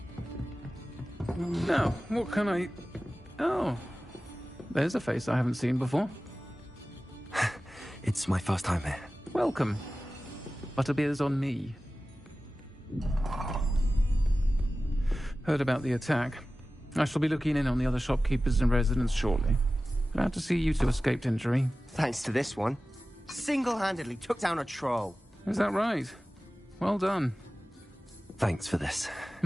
Now, what can I... Oh, there's a face I haven't seen before. It's my first time here. Welcome. Butterbeer's on me. Heard about the attack. I shall be looking in on the other shopkeepers and residents shortly. Glad to see you two escaped injury. Thanks to this one. Single-handedly took down a troll. Is that right? Well done. Thanks for this.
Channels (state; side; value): normal; both; correlation 0.96